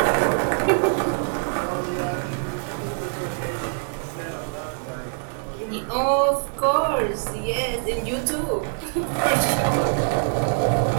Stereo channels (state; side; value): silent; left; 63 dB below the other